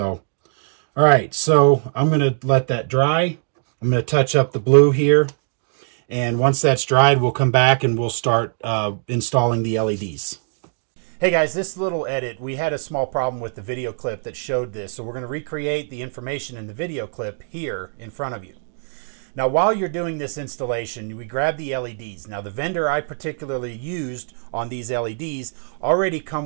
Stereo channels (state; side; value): silent; left; 64 dB below the other